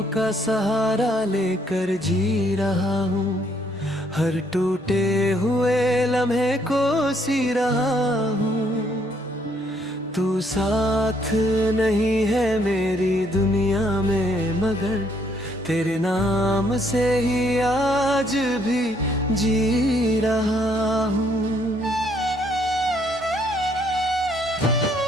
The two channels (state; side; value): normal; both; correlation 0.69